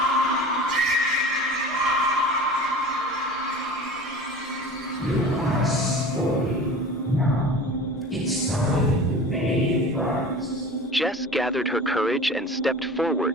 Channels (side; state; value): both; normal; correlation 0.38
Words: It's time to pay first. Jess gathered her courage and stepped